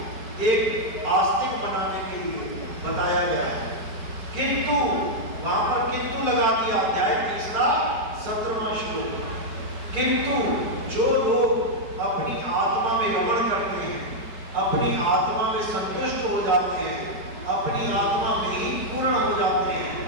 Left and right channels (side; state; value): left; late; 4.5 ms